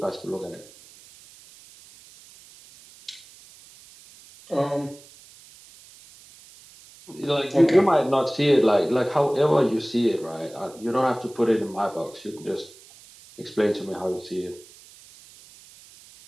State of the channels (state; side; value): noise; right; hiss, 23 dB below the sound